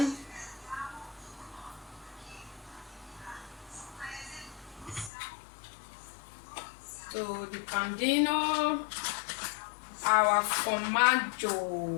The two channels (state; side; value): drops out; right; at 5.1 s